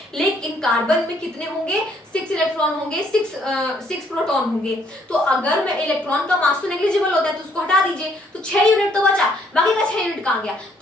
लेकिन कार्बन में कितने होंगे, 6 इलेक्ट्रॉन होंगे, 6 प्रोटॉन होंगे। तो अगर मैं इलेक्ट्रॉन का मास तो नेग्लिजिबल होता है तो उसको हटा दीजिए, तो 6 यूनिट तो बचा, बाकी का 6 यूनिट कहां गया।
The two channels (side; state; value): both; normal; correlation 0.67